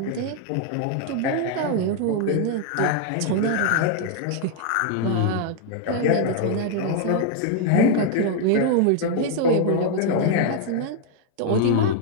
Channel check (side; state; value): both; different; correlation 0.00